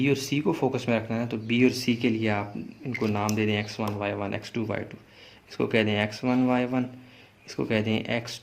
और सी को फोकस में रखना है, तो बी और सी के लिए आप इनको नाम दे दें x1 y1 x2 y2। इसको कह दें x1 y1, इसको कह दें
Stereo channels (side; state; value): both; identical; correlation 1.00